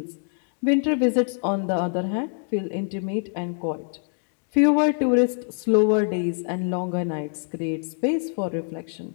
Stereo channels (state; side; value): silent; right; 62 dB below the other